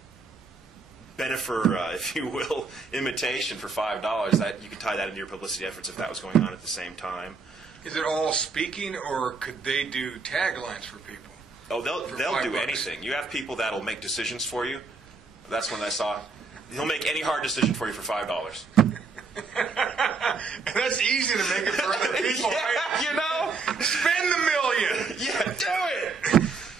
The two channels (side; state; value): left; quieter; 4.4 dB